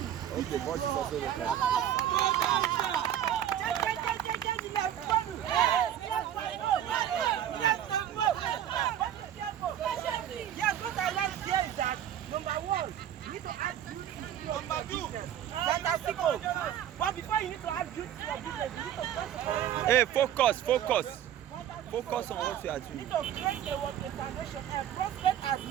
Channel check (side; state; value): left; quieter; 10.7 dB